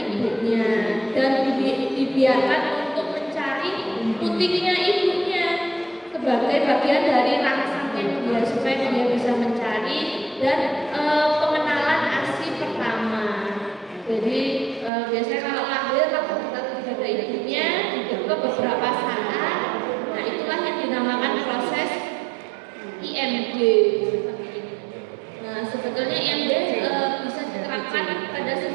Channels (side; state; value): left; drops out; at 14.9 s